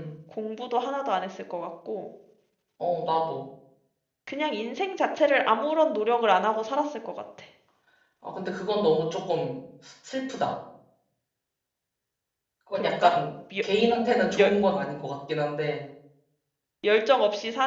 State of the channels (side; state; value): both; identical; correlation 1.00